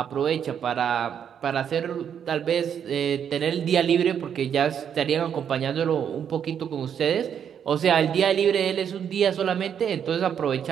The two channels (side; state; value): left; quieter; 8.3 dB